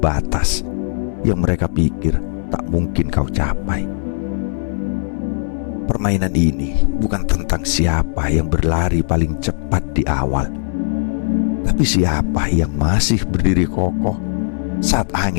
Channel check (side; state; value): right; silent; digital silence